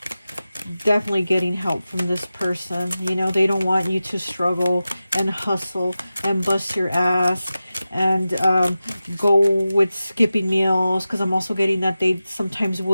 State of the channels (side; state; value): both; inverted; correlation -0.94